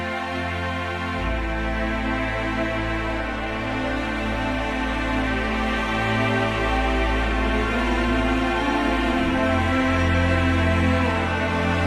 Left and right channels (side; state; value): both; identical; correlation 1.00